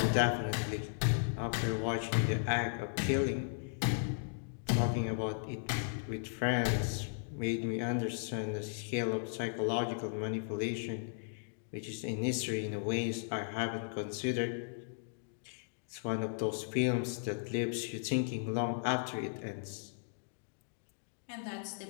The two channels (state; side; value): silent; right; digital silence